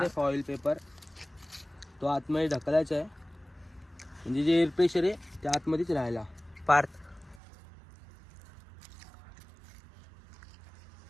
फॉइल पेपर तो आतमध्ये ढकलायचा आहे म्हणजे जे एअर प्रेशर आहे ते आतमध्येच राहायला. पार्थ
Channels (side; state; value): left; drops out; at 7.4 s